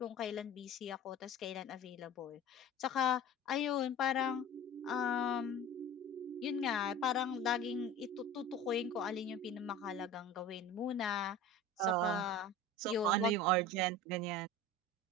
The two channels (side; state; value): both; normal; correlation 0.36